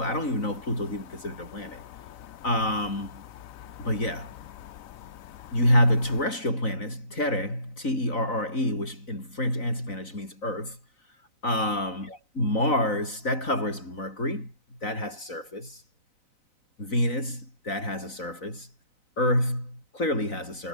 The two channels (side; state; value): right; late; 4.0 ms